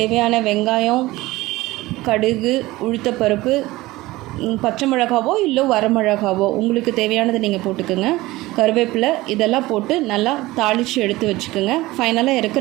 வெங்காயம், கடுகு, உளுத்தப்பருப்பு, பச்சை மிளகாவோ இல்லை வரமிளகாவோ உங்களுக்கு தேவையானதை நீங்கள் போட்டுக்கோங்க. கருவேப்பிலை இதெல்லாம் போட்டு நல்லா தாளித்து எடுத்து வச்சுக்கோங்க. ஃபைனலாக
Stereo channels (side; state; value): left; quieter; 18.9 dB